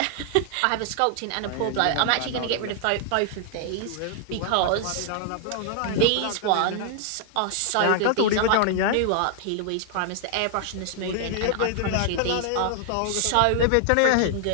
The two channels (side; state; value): both; different; correlation 0.00